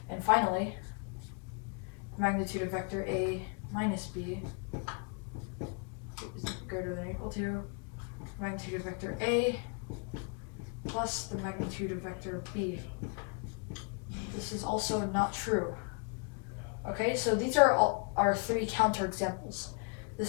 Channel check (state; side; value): quieter; right; 38.2 dB